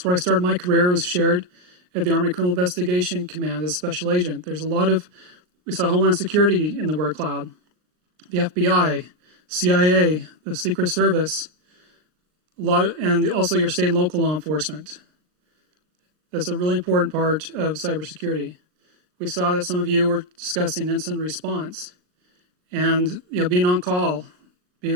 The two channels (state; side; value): late; left; 39 ms